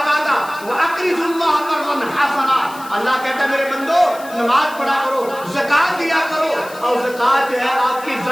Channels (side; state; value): left; noise; hiss, 18 dB below the sound